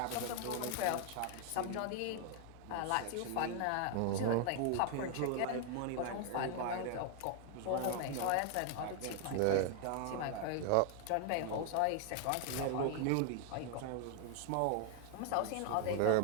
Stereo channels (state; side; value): different; both; correlation 0.00